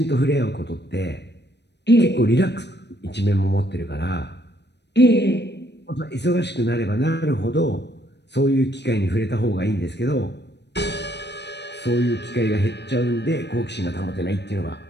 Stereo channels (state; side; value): late; right; 0.50 ms